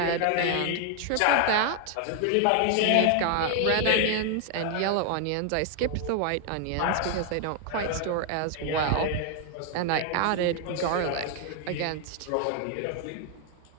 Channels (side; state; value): both; different; correlation 0.00